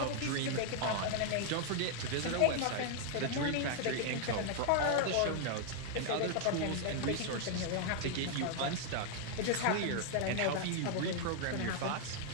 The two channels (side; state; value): both; different; correlation 0.00